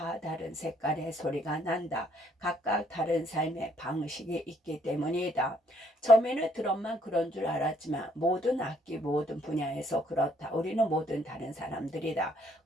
다른 색깔의 소리가 난다. 각각 다른 삶의 방식이 있기 때문이다. 처음에는 드럼만 그런 줄 알았지만 모든 악기 모든 분야에서 그래서 그렇다. 우리는 모든 다른 사람들이다.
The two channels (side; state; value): both; normal; correlation 0.67